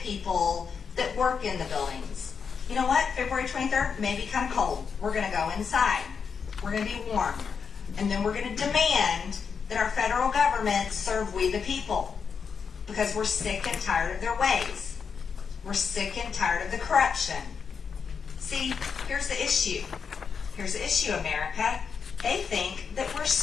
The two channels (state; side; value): quieter; right; 6.2 dB